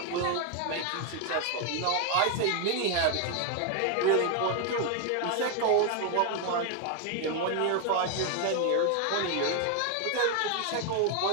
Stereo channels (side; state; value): both; different; correlation 0.01